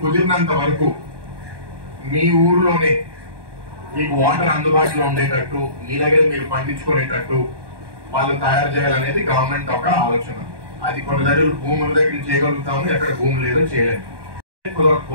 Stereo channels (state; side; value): late; left; 1.2 ms